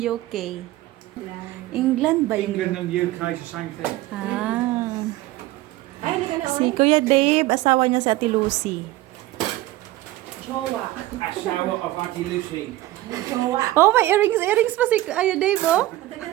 England ba yun? England and UK is the same thing. Ah. Si Kuya Dave, asawa niya si Ate Lucy. A shower of Auntie Lucy. Oh, may earrings pa si Kuya Dave, oh.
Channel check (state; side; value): quieter; left; 16.9 dB